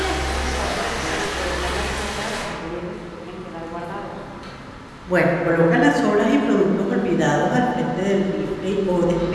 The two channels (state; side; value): identical; both; correlation 1.00